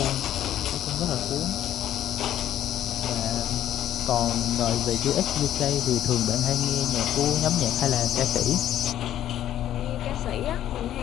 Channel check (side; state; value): right; quieter; 11.9 dB